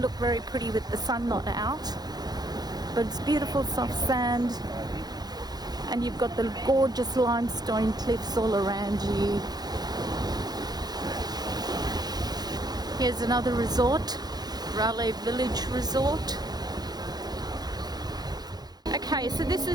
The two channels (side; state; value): left; late; 0.19 ms